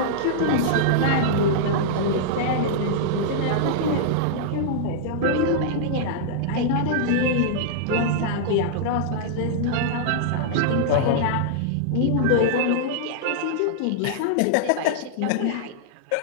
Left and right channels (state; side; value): different; both; correlation -0.02